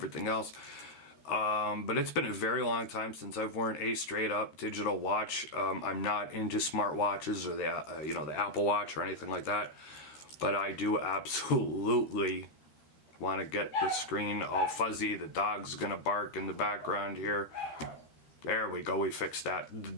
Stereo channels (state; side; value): late; right; 13 ms